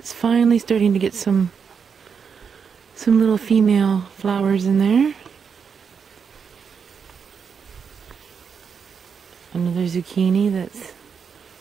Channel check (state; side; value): quieter; left; 6.4 dB